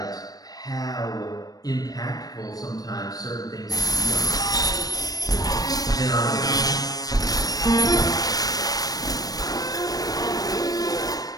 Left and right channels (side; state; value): right; late; 0.18 ms